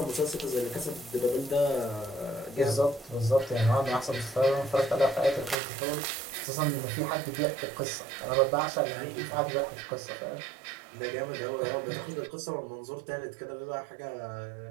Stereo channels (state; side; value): drops out; left; at 5.6 s